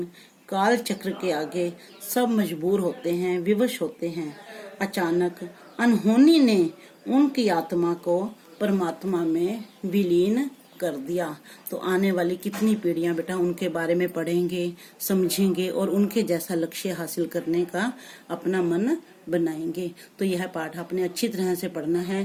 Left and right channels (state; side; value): identical; both; correlation 1.00